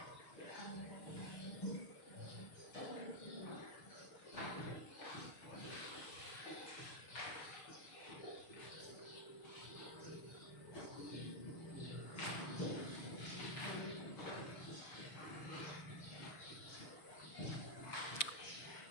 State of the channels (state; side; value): late; right; 6.6 ms